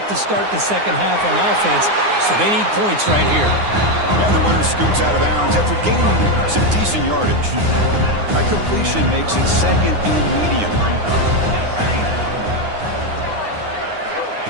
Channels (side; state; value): left; late; 9.7 ms